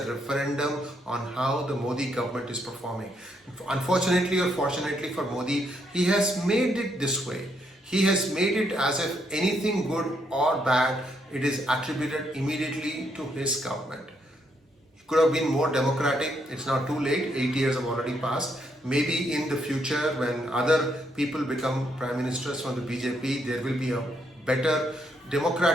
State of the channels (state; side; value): normal; both; correlation 0.75